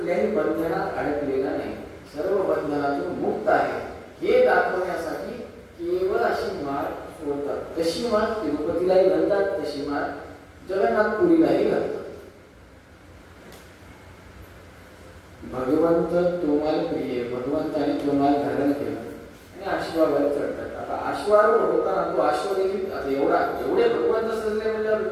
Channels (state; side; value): identical; both; correlation 1.00